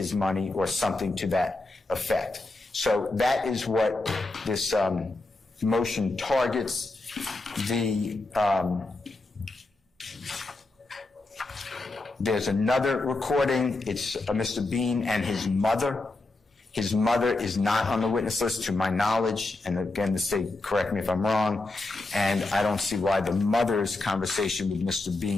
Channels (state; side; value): quieter; right; 3.1 dB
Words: money or something to that effect. So that is what this motion targets. There's another recording. It's Mr. Bean and his mother. His mother is not on the witness list to my knowledge, and again, the state, correct me if I'm wrong, and I don't see why the mother's conversation with Mr.